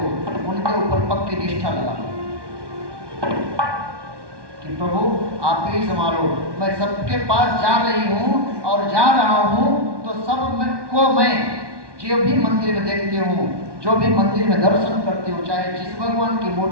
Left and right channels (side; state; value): left; late; 1.2 ms